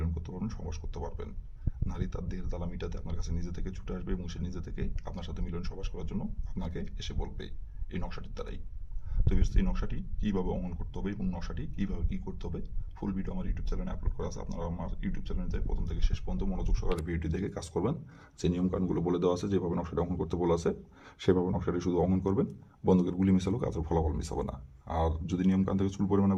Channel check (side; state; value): both; identical; correlation 1.00